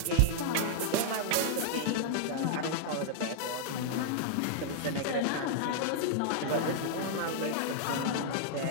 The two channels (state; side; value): different; both; correlation -0.01